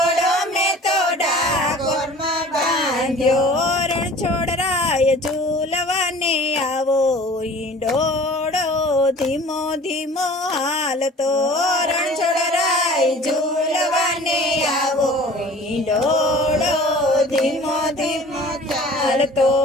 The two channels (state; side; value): normal; both; correlation 0.45